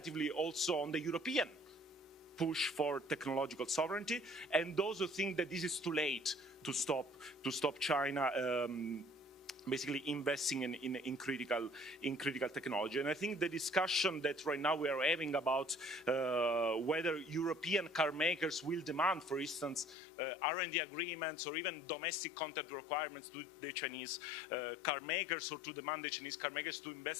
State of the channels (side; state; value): right; drops out; at 20.0 s